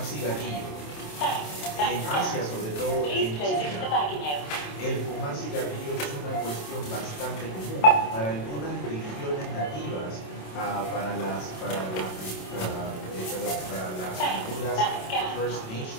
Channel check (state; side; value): late; right; 27 ms